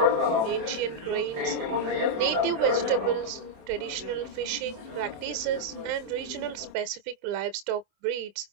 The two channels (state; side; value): late; left; 27 ms